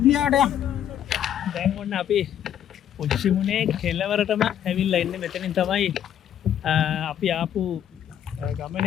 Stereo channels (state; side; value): quieter; right; 10.1 dB